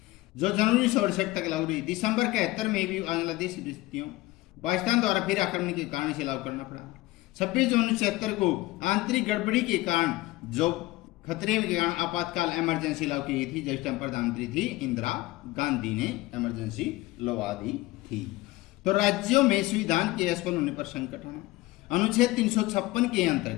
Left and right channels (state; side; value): quieter; right; 19.3 dB